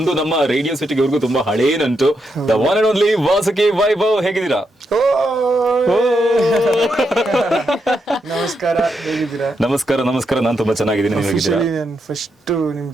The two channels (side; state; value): both; normal; correlation 0.82